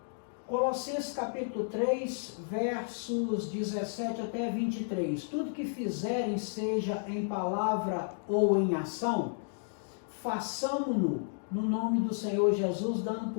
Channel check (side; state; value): right; silent; digital silence